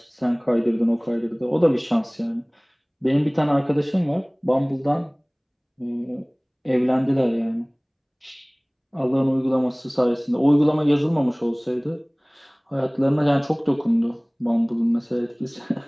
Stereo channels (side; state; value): both; identical; correlation 1.00